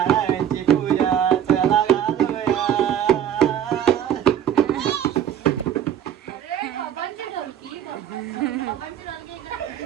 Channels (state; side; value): quieter; left; 10.0 dB